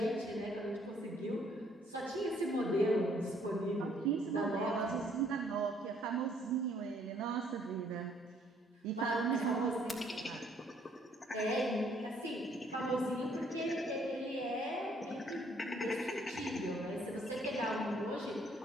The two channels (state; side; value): normal; both; correlation 0.64